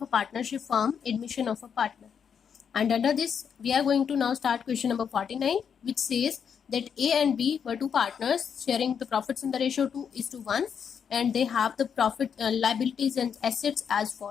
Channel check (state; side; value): quieter; right; 7.3 dB